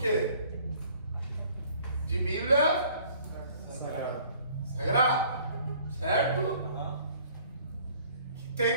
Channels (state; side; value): inverted; both; correlation -0.56